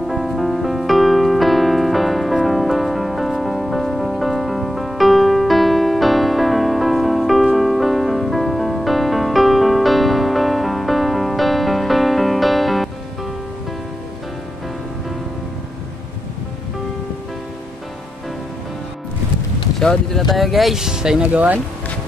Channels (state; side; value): normal; both; correlation 0.86